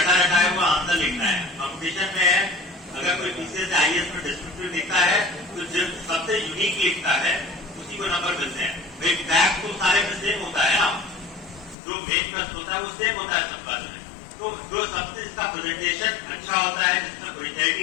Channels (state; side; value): drops out; right; at 11.8 s